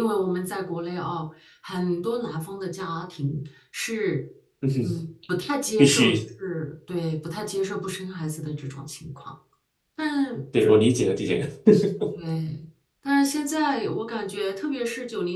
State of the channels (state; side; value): identical; both; correlation 1.00